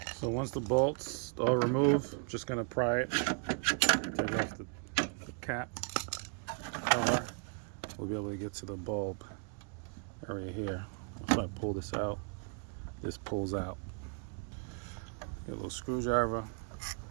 So once the bolts are removed, I'm just going to pry it, take off the cap cover. We'll be able to get to the bulb area here. If I pull this out, this pulls out. Get a little screwdriver,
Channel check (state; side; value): quieter; left; 38.5 dB